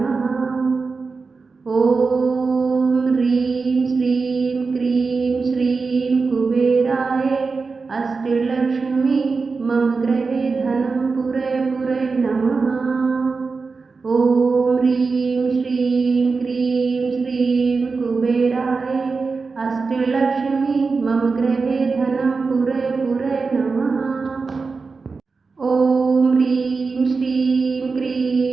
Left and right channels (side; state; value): left; quieter; 4.4 dB